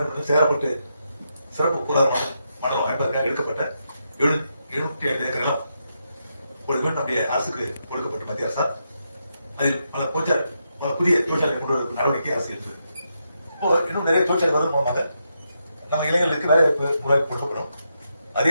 சேரப்பட்டு சிறப்பு பொருளாதார மண்டலம் அமைப்பதற்காக எடுக்கப்பட்ட 705 ஏக்கர் நிலம் மீண்டும் நம்முடைய அரசுக்கு கொடுக்கப்பட்ட மத்திய அரசால் அதில் பல புதிய தொழிற்சாலை கொண்டு வருவதற்கு நடவடிக்கை அரசு எடுத்தது. இப்போ இன்னும் நிறைய தொழிற்சாலை வருவதன் மூலமாக நம்ம இளைஞர்களுக்கு வேலை வாய்ப்பு கொடுக்கப்படும்.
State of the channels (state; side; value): inverted; both; correlation -0.83